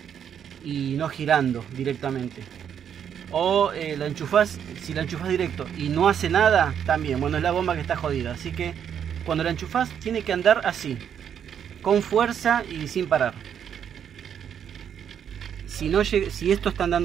y no girando directamente. O la enchufás, si la enchufás directo y no hace nada, también, bueno, es la bomba que está jodida. Así que cuando la enchufás tiene que andar así, con fuerza y sin parar. Si esto está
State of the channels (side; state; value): left; quieter; 8.6 dB